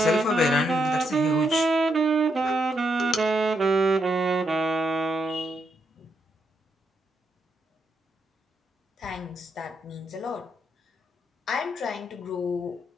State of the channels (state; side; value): normal; both; correlation 0.79